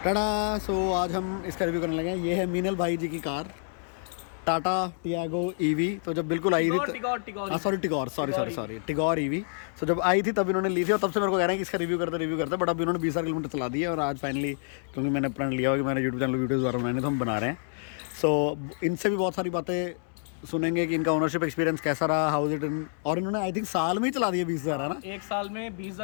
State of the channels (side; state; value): right; silent; digital silence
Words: सो आज हम इसका रिव्यू करने लगे हैं। ये है मीनल भाई जी की कार टाटा टियागो ईवी। तो जब बिल्कुल आई थी टिगोर ईवी। सो जब आई थी तब इन्होंने ली थी और तब से मेरे को कह रहे हैं कि इसका रिव्यू करते बट अभी इन्होंने 20,000 किलोमीटर चला दिया और आज फाइनली क्योंकि मैंने प्रण लिया हुआ कि मैंने यूट्यूब चैनल वीडियोज़ दोबारा बनाने तो हम बना रहे हैं। सो इनसे भी बहुत सारी बातें सुनेंगे कि इनका ओनरशिप एक्सपीरियंस कैसा रहा, हाउ इट इन, और इन्होंने आई थिंक साल में ही चला दिया 20,000 है ना। एक साल में